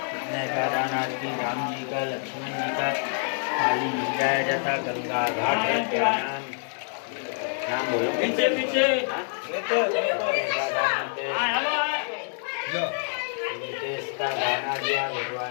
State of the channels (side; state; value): right; silent; 59 dB below the other